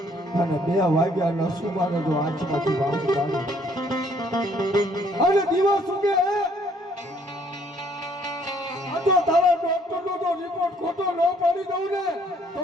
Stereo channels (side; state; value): both; normal; correlation 0.63